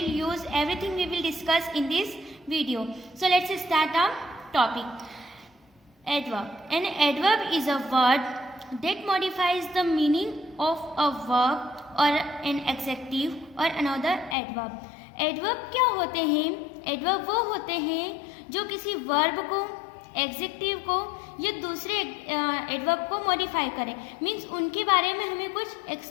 use? Everything we will discuss in this video. So let's start our topic. Adverb. An adverb is a word that modifies the meaning of a verb or an adjective or another adverb. Adverb क्या होते हैं? Adverb वो होते हैं जो किसी verb को, adjective को या दूसरे एडवर्ब को मॉडिफाई करें। मीन्स उनके बारे में हमें कुछ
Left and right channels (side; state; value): right; drops out; at 14.4 s